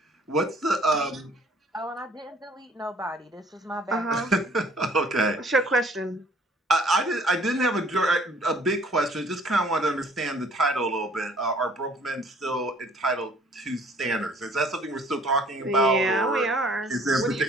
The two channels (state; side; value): normal; both; correlation 0.57